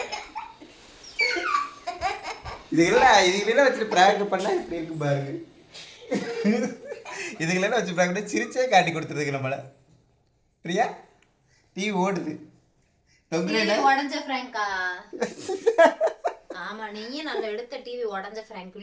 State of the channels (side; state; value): both; identical; correlation 1.00